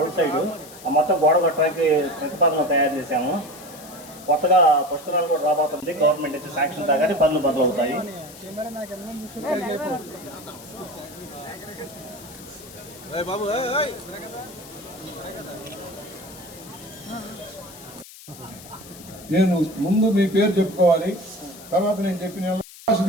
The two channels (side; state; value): left; noise; hiss, 18 dB below the sound